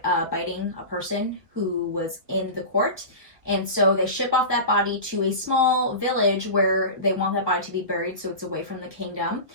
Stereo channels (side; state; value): left; late; 1.0 ms